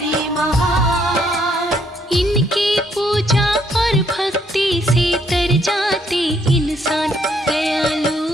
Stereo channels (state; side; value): normal; both; correlation 0.70